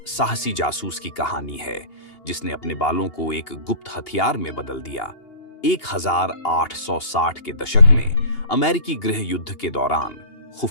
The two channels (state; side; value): late; right; 2.8 ms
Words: साहसी जासूस की कहानी है जिसने अपने बालों को एक गुप्त हथियार में बदल दिया। 1860 के दशक में अमेरिकी गृह युद्ध के दौरान